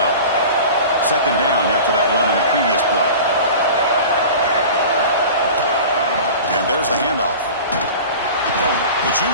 Second down after that run in the previous play. And there's the handoff. The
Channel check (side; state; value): both; inverted; correlation -0.37